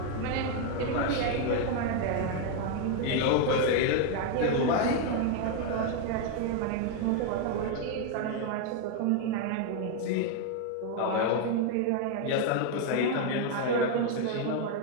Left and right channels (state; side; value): different; both; correlation 0.01